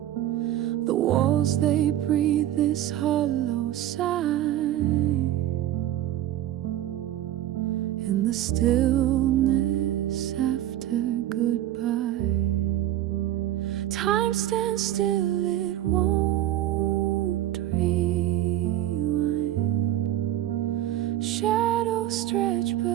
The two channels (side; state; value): left; quieter; 13.0 dB